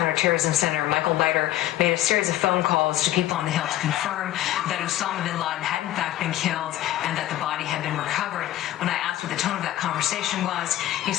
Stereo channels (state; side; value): quieter; right; 14.3 dB